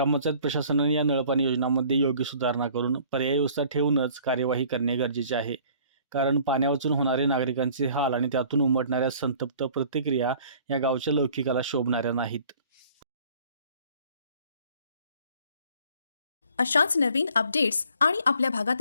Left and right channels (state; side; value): inverted; both; correlation -0.54